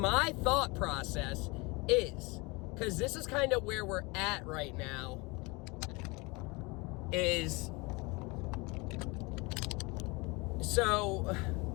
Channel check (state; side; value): quieter; right; 26.3 dB